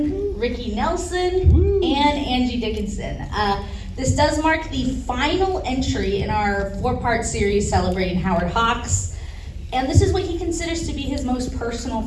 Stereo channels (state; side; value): identical; both; correlation 1.00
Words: Ricky Nelson, and Angie Dickinson. This does mark the final entry in our 4-part series celebrating Howard Hawks. And this is what he considers to be his most